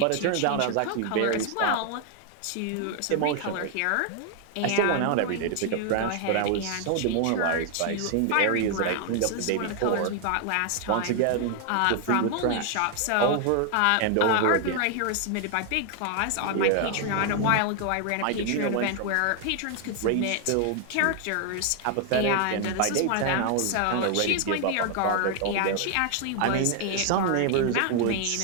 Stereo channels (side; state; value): both; different; correlation 0.00